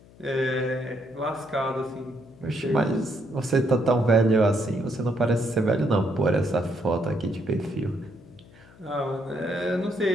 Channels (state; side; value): noise; left; hum, 24 dB below the sound